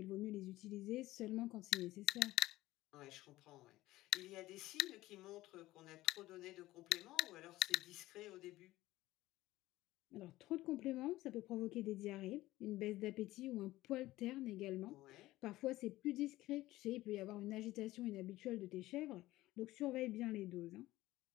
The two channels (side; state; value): right; quieter; 17.0 dB